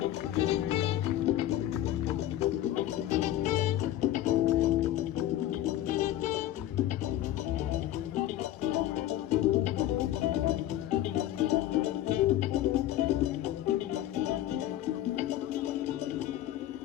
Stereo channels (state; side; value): quieter; right; 12.9 dB